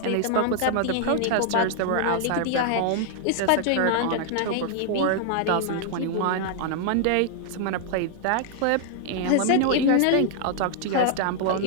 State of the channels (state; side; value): different; both; correlation 0.00